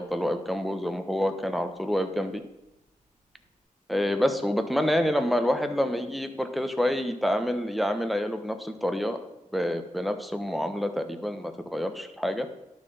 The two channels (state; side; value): normal; both; correlation 0.91